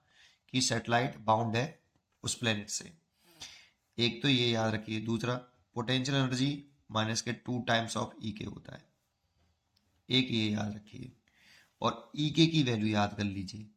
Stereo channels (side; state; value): both; identical; correlation 1.00